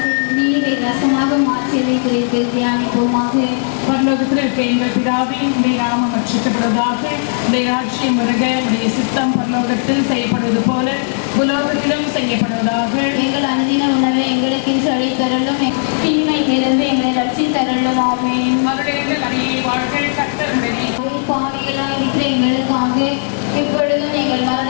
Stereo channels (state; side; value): silent; right; 63 dB below the other